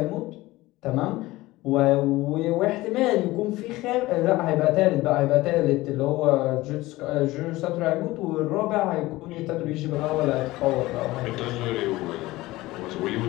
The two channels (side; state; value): right; quieter; 18.8 dB